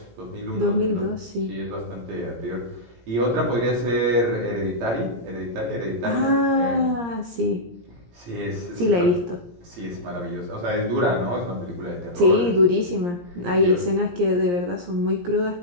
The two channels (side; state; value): left; late; 17 ms